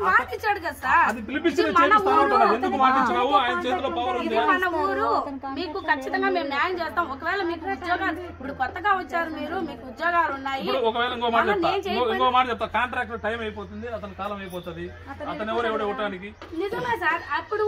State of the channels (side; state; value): both; identical; correlation 1.00